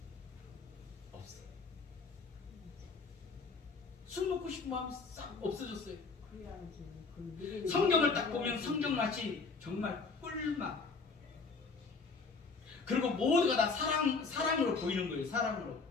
없어요. 술 먹고 싶은 마음이 싹 없어졌어요. 성경을 딱 보면 성경 맛이 정말 꿀맛. 그리고 모두가 다 사랑으로 보이는 거예요. 사랑으로.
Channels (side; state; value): right; quieter; 4.5 dB